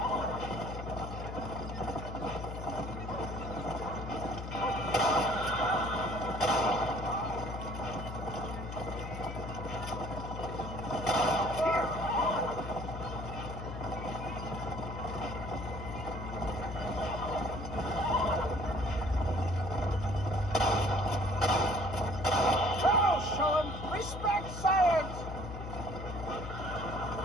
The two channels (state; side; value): noise; left; hum, 8 dB below the sound